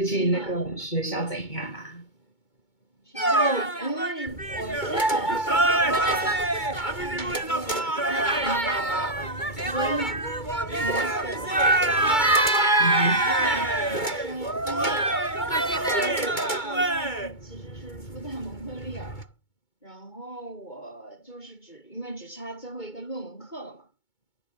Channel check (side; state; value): right; late; 2.2 ms